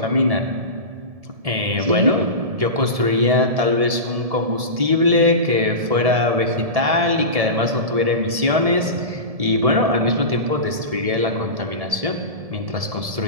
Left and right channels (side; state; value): left; late; 1.7 ms